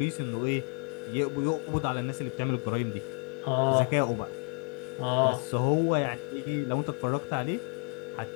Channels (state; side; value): quieter; right; 36.5 dB